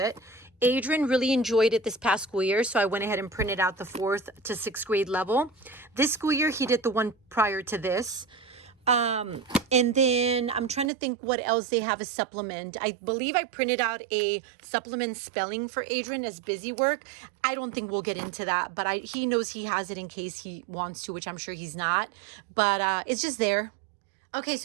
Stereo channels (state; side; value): drops out; left; at 10.9 s